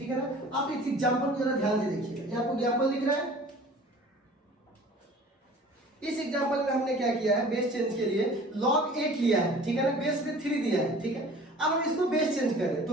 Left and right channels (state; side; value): normal; both; correlation 0.46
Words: है ना। आप इस एग्जांपल को जरा ध्यान से देखिएगा, ये आपको एग्जांपल दिख रहा है। इस एग्जांपल में हमने क्या किया है, बेस चेंज के लिए log 8 लिया है, ठीक है ना, बेस में 3 दिया है, ठीक है। अब हम इसको बेस चेंज करें